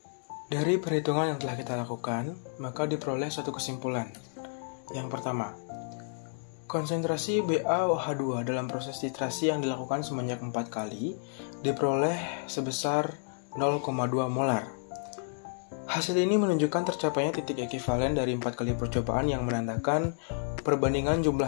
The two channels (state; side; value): silent; right; digital silence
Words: Dari perhitungan yang telah kita lakukan, maka diperoleh suatu kesimpulan. Yang pertama, konsentrasi BaOH2 dalam proses titrasi yang dilakukan sebanyak 4 kali diperoleh sebesar 0,2 molar. Hasil ini menunjukkan tercapainya titik ekivalen dari 4 kali percobaan yang menandakan perbandingan